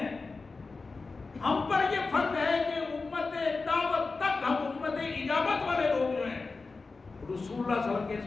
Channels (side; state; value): right; quieter; 4.0 dB